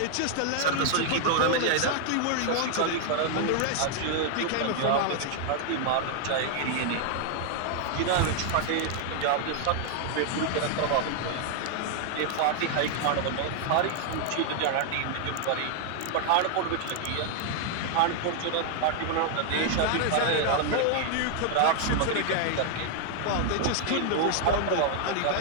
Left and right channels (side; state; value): both; different; correlation 0.00